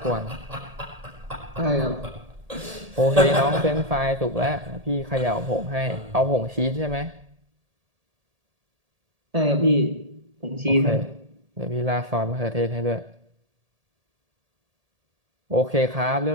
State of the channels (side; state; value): left; late; 1.8 ms